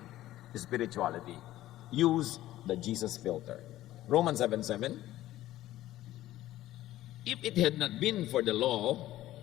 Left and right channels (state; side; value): quieter; right; 14.8 dB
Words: spirituality. Use the Jesus filter. Romans 7:7. If it had not been for the law,